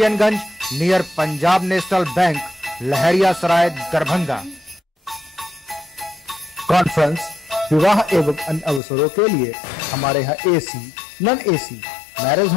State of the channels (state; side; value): drops out; right; at 8.8 s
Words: near Punjab national bank, Laheriasarai, Darbhanga. Conference, विवाह एवं अन्य अवसरों के लिए हमारे यहाँ AC, non AC, marriage